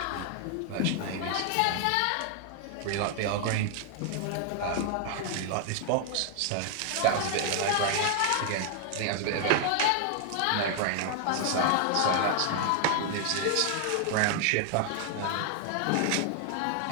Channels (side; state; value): both; different; correlation 0.00